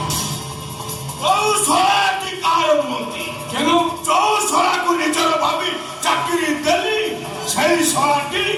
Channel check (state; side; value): identical; both; correlation 1.00